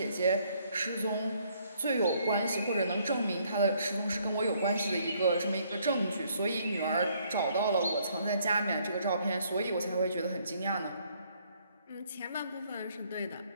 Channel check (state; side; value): inverted; both; correlation -0.67